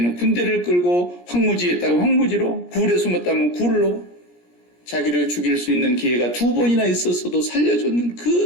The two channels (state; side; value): late; right; 17 ms